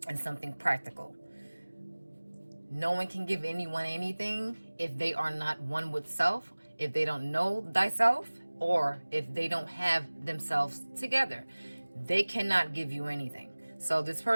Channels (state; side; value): inverted; both; correlation -1.00